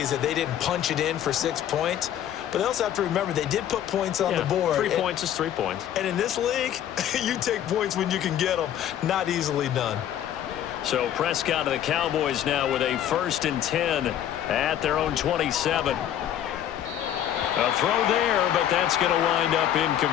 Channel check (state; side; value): quieter; right; 10.8 dB